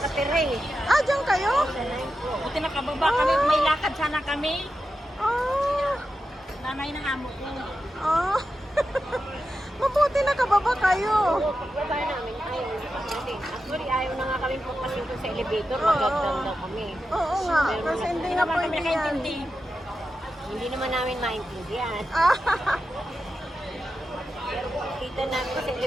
eh. Ah, dyan kayo? Buti nakababa kami, may lakad sana kami. Ah, Nanay ng amo ko. ah. Mabuti nakababa kayo. Pagbaba namin, ayaw na kami. Actually, ayaw na nga kami pagpasok sa elevator. Oo. Magagdan daw kami. Oo nga, kasi hindi na naman kami pwede yan. nakaintindi. Hindi naman namin maintindihan. Ah, Pero kung kita namin sa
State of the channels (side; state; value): both; normal; correlation 0.90